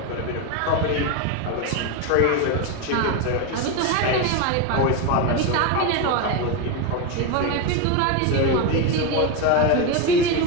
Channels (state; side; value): different; both; correlation 0.03